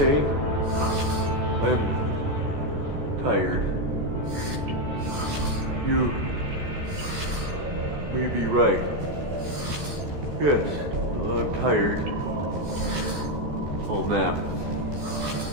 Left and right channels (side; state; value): left; late; 14 ms